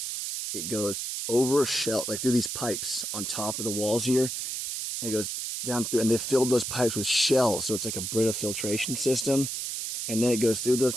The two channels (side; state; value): right; noise; hiss, 4 dB below the sound